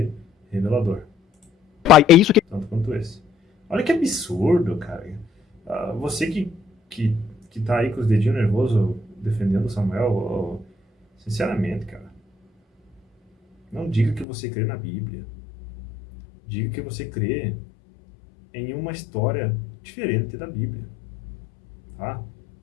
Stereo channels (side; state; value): right; drops out; at 14.2 s